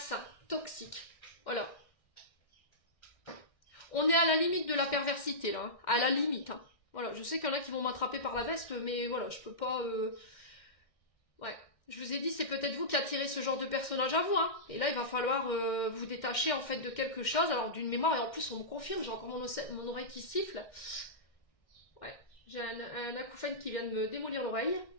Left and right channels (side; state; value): right; late; 2.1 ms